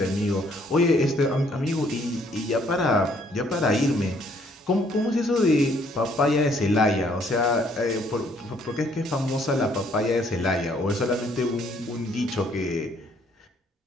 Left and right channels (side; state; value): both; normal; correlation 0.65